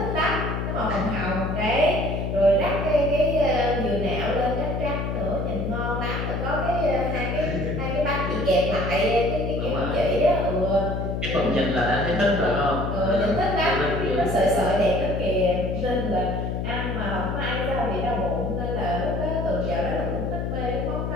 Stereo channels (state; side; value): noise; left; hum, 2 dB below the sound